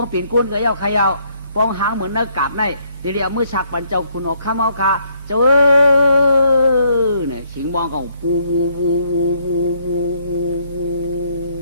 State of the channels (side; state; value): both; inverted; correlation -0.69